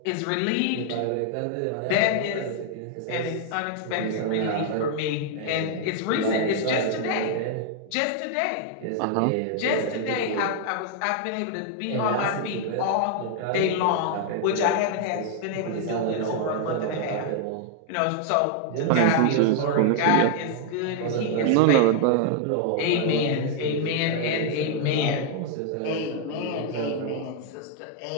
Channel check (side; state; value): both; different; correlation 0.00